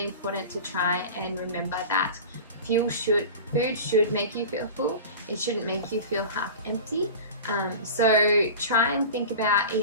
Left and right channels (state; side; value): inverted; both; correlation -0.34